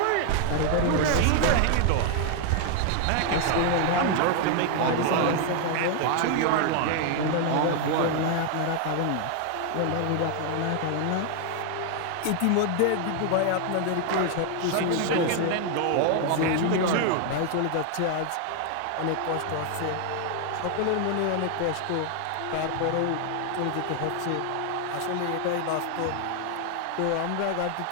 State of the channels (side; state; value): both; different; correlation 0.00